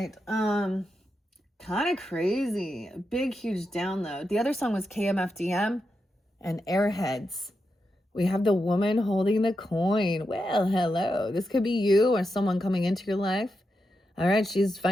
Kind of crazy. Big, huge download. The other song was KMFDM and Airheads. We have the woman holding the coin. Well, hello. This could be you or someone coming into your life. All right. She's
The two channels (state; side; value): normal; both; correlation 0.86